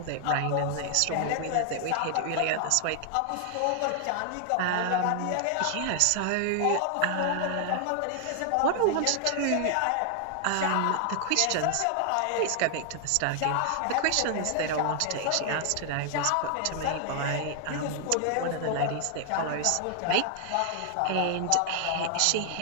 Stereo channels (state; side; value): different; both; correlation 0.00